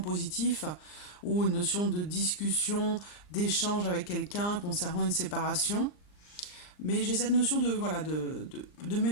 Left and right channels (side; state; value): right; late; 39 ms